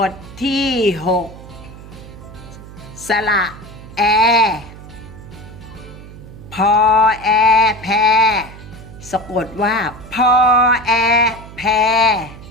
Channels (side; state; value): right; noise; hum, 17 dB below the sound